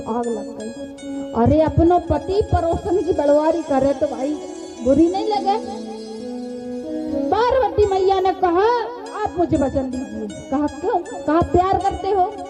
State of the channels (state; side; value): identical; both; correlation 1.00